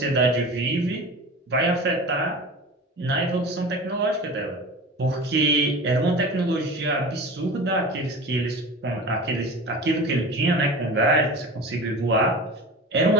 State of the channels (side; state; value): both; normal; correlation 0.34